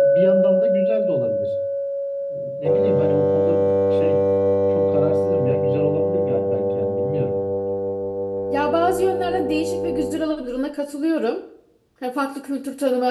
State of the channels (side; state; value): both; identical; correlation 1.00